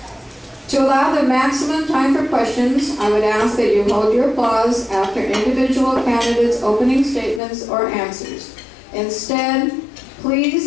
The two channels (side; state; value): right; drops out; at 7.4 s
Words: To allow the maximum time for questions, I would ask that you hold your applause after individual candidates' opening statements or answers. Instead,